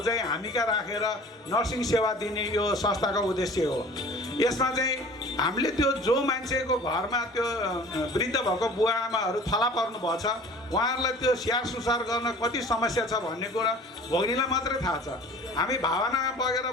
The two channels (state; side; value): normal; both; correlation 0.45